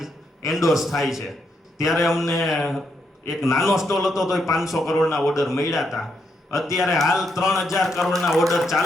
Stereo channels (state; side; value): normal; both; correlation 0.79